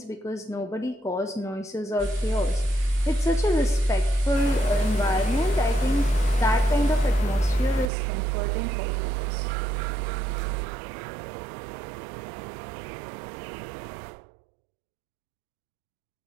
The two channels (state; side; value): drops out; left; at 7.9 s